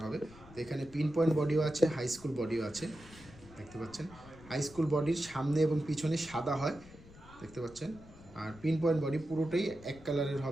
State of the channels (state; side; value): noise; left; rumble, 20 dB below the sound